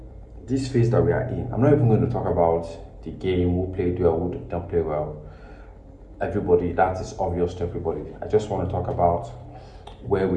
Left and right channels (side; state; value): both; identical; correlation 1.00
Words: this phase that we are in, I'm not even going to talk about the game, who played well, who did not play well. Everybody, that is obvious to everybody. I just want to talk about where